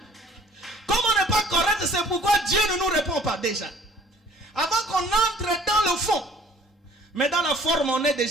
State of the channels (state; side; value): normal; both; correlation 0.53